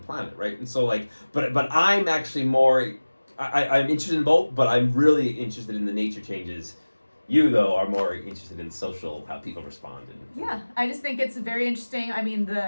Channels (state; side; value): inverted; both; correlation -1.00